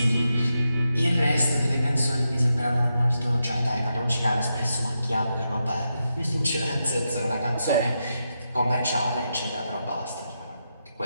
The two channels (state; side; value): inverted; both; correlation -0.86